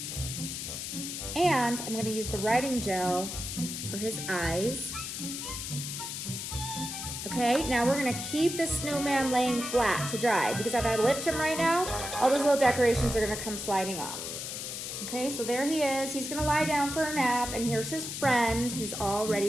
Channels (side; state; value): left; noise; hiss, 6 dB below the sound